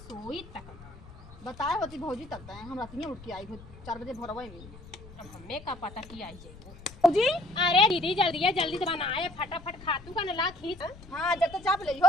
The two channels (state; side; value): noise; left; rumble, 18 dB below the sound